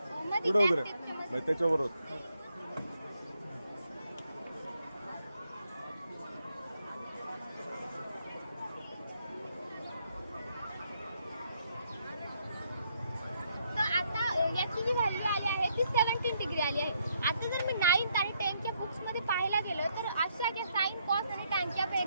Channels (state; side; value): inverted; both; correlation -0.74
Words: मध्ये पुढे black उभं tape च्या मध्ये. राहा त्याच्यावर तर आता याची जी व्हॅल्यू आली आहे ती 17 डिग्री आली आहे. आता जर मी 9th आणि 10th बुक्समध्ये पाहायला गेलं तर अशा ज्या साइन कॉस आणि टॅनच्या